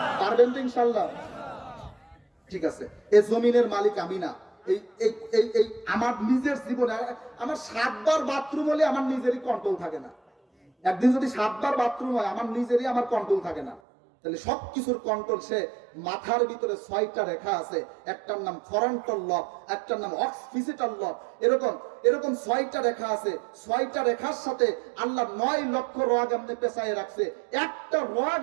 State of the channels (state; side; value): drops out; left; at 13.8 s